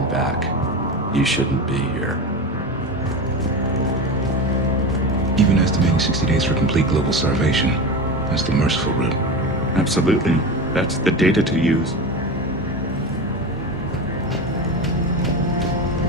back. You shouldn't be here. Even estimating 60 days for complete global starvation. That's the merciful route. Absolutely. That's the data to use.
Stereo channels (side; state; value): both; normal; correlation 0.24